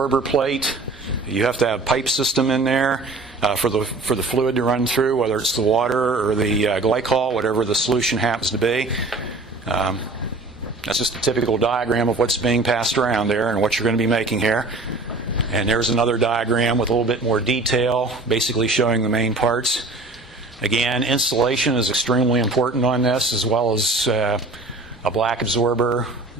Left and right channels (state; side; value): quieter; left; 3.2 dB